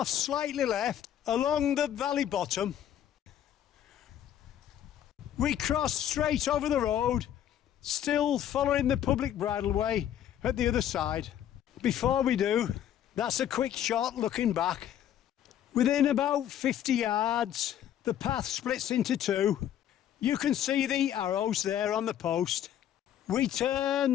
slightly left along the valley bottom. We cross straight over the road, still following the public bridleway at the other side. Before we do, that's a quick shot looking back. Within about 50 yards, the path splits into 2. You can see the arrows there on the post. We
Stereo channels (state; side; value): quieter; right; 10.7 dB